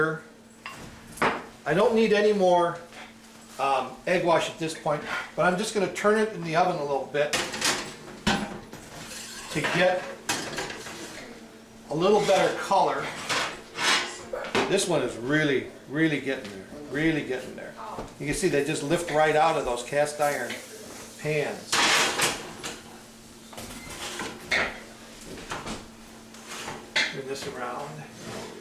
I don't need any more egg wash at this point, but I'm just going to turn it in the oven a little bit to get a little better color. This one is really getting there, really getting there. You can see they just lift right out of those cast iron pans. Turn this around.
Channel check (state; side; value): identical; both; correlation 1.00